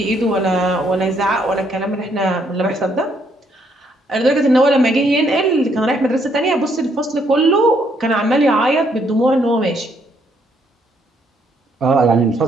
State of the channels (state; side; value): normal; both; correlation 0.71